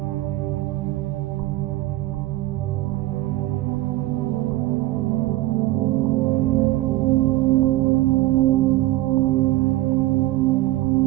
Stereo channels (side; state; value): left; quieter; 17.3 dB